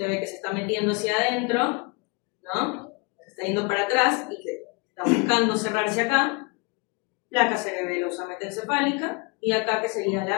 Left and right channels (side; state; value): right; quieter; 29.7 dB